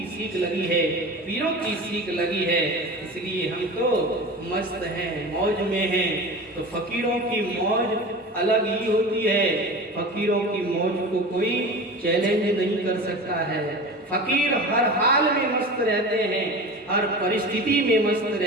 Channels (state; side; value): normal; both; correlation 0.32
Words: सीख लगी है, पीरों की सीख लगी है, इसलिए हम तो मस्त हैं, मौज में हैं। तो फकीरों की मौज अलग ही होती है, फकीरों की मौज को कोई चैलेंज नहीं कर सकता है। फकीर हर हाल में मस्त रहते हैं, हर परिस्थिति में मस्त